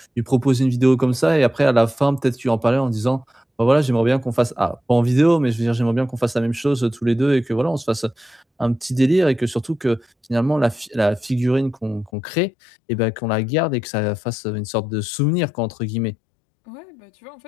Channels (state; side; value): drops out; right; at 12.1 s